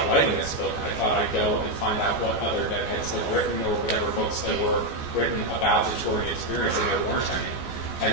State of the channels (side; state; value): right; late; 14 ms